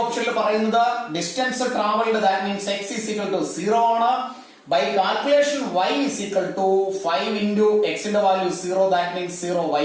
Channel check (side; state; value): both; identical; correlation 1.00